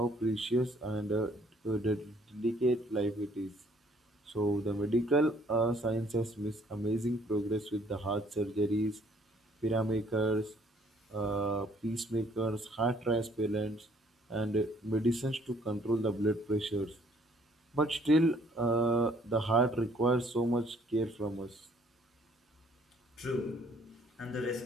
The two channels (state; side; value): normal; both; correlation 0.62